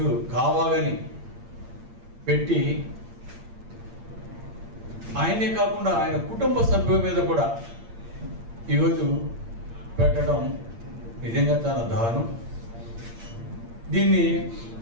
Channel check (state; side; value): late; left; 8.7 ms